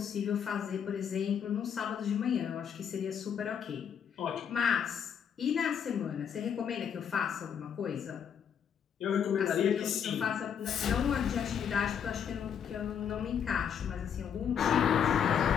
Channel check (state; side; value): quieter; right; 7.9 dB